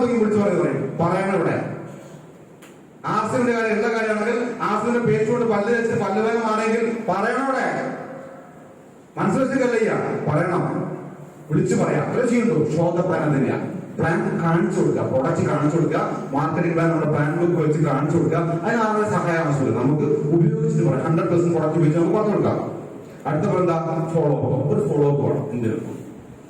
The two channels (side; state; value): both; identical; correlation 1.00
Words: വിളിച്ചു പറയണം. ഇവിടെ ആസിന്റെ കാര്യം, എല്ലാ കാര്യമാണെങ്കിൽ ആസിന്റെ പേച്ചുകൊണ്ട് പല്ല് വെച്ച് പല്ലുവേദമാണെങ്കിൽ പറയണം. ഇവിടെ മനസ്സിലാക്കില്ല, പറയണം, വിളിച്ചു പറയാം. അത് ചെയ്യുന്നു. ഷോ ദ പ്ലാൻ തന്നെയാണ്. പ്ലാൻ കാണിച്ചു കൊടുക്കുക, പ്രൊഡക്റ്റ് കാണിച്ചു കൊടുക്കുക, മാർക്കറ്റിംഗ് പ്ലാൻ നമ്മുടെ പ്ലാൻ ബുക്ക് വെച്ച് കാണിച്ചു കൊടുക്കുക. അതിന് ആരുടെ സഹായം ആവശ്യമില്ല. നമുക്ക് ഉപയോഗിച്ചിട്ട് പറയാം. 100% പ്രൊഡക്റ്റ് ഉപയോഗിച്ച് നമുക്ക് പറഞ്ഞു കൊടുക്കാം. അടുത്ത എന്താ? Follow up. ഒരു ഫോളോ അപ്പ് വേണം. എന്തിനും